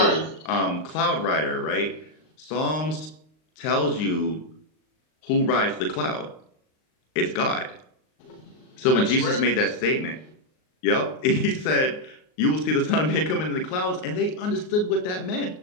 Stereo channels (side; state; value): right; late; 38 ms